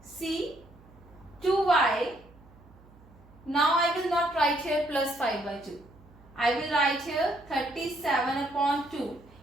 See, 2y. Now I will not write here plus 5 by 2. I will write here 37 upon 2.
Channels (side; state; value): right; noise; hum, 25 dB below the sound